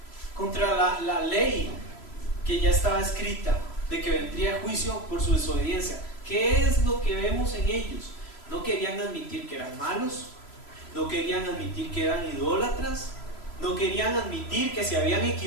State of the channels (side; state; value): right; late; 3.0 ms